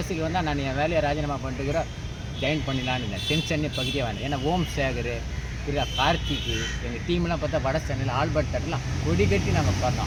வந்தால் நான் என் வேலையை ராஜினாமா பண்ணிட்டுக்கிறோம், ஜாயின் பண்ணிடலான்னு இருந்தேன். சென்னை பகுதியாக வந்தேன். ஏன்னா ஓம் சேகர், கார்த்திக்கு, எங்கள் டீம்லாம் பார்த்தா வட சென்னையில் ஆல்பர்ட் தேட்டர்லாம் கொடி கட்டி நாங்கள்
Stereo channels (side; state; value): both; identical; correlation 1.00